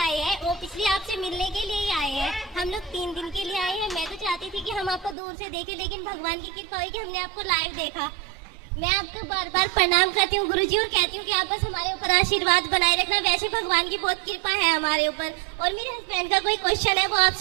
आए हैं, वो पिछले आपसे मिलने के लिए ही आए हैं। हम लोग 3 दिन के लिए आए हैं। मैं तो चाहती थी कि हम आपको दूर से देखें, लेकिन भगवान की कृपा हुई कि हमने आपको लाइव देखा। मैं आपको बार बार प्रणाम करती हूँ गुरुजी, और कहती हूँ कि आप बस हमारे ऊपर आशीर्वाद बनाए रखना। वैसे भगवान की बहुत कृपा है हमारे ऊपर। और मेरे हस्बैंड का कोई क्वेश्चन है, वो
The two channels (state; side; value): drops out; left; at 5.2 s